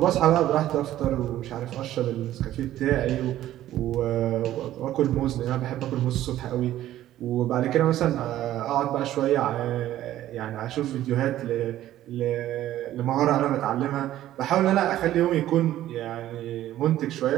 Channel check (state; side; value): quieter; left; 13.4 dB